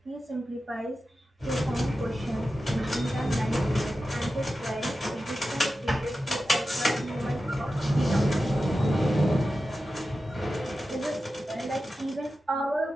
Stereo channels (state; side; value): normal; both; correlation 0.92